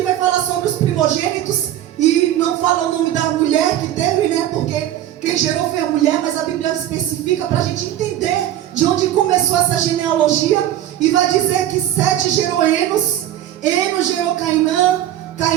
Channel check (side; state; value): left; quieter; 12.3 dB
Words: vai falar sobre os primogênitos, e não fala o nome da mulher que teve, porque quem gerou foi a mulher, mas a Bíblia especifica para a gente entender de onde começou essa genealogia. E vai dizer que Sete gerou Enos, Enos gerou Cainã,